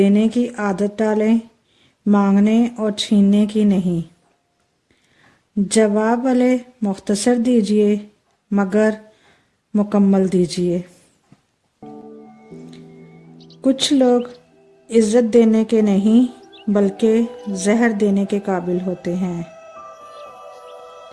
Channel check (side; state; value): both; identical; correlation 1.00